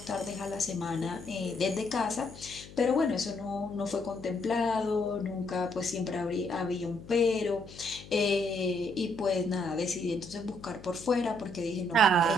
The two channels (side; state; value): left; noise; hum, 17 dB below the sound